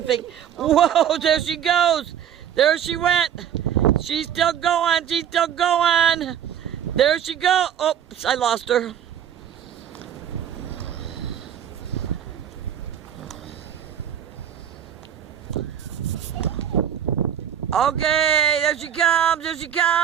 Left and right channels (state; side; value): quieter; left; 9.5 dB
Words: Whoa, there she goes. There she went. She's still going. There she goes. Oops, I lost her. Okay, there she